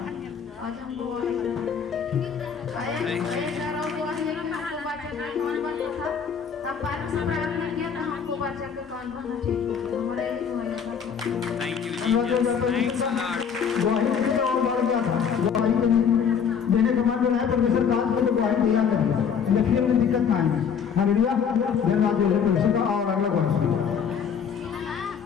आज हम गवाही एक गवाही देना हमको बच्चा का कौन बनता था, तब बाद में प्रार्थना किया था हमको बच्चा का कौन बनना ठीक हो गया। हमारा यही हुआ था। Thank you, Jesus. Thanks a lot. गवाही देने और बढ़ गया था, गवाही देने के बाद जो है परमेश्वर काज को तो गवाही दिया करेगा, लेकिन में दिक्कत ना आएगी। हालेलुया, धन्यवाद देते परमेश्वर का। और अगला क्वेश्चन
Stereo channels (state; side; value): quieter; right; 7.0 dB